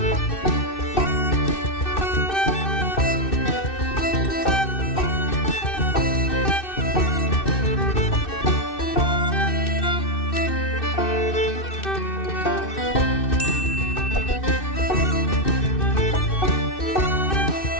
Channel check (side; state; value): right; late; 2.6 ms